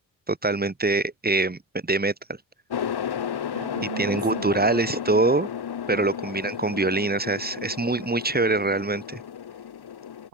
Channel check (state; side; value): normal; both; correlation 0.23